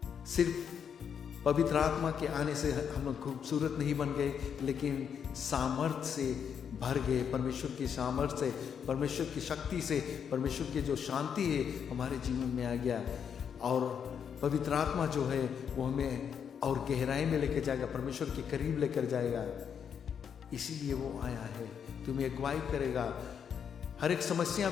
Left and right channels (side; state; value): right; quieter; 7.6 dB